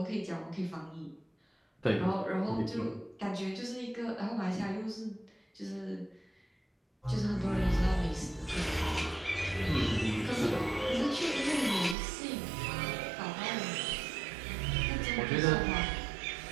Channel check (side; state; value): left; drops out; at 12.0 s